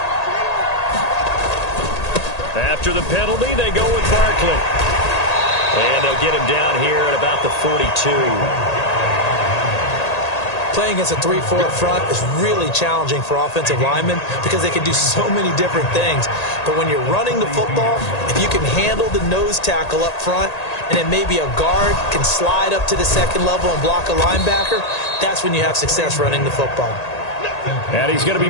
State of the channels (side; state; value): right; late; 1.8 ms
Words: After the penalty, they go with Barkley. And they'll get him down here at about the 42. Playing against a 3-4 front is really challenging for offensive linemen because they can do so many different things. But when you're running the football, if you can handle the nose tackle up front, and then maybe a guard can slide up to the second level and block a linebacker, that's when you have success running the football. And he's going to be